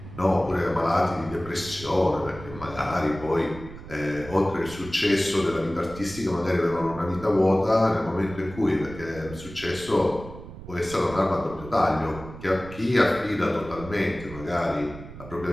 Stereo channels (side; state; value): right; noise; rumble, 14 dB below the sound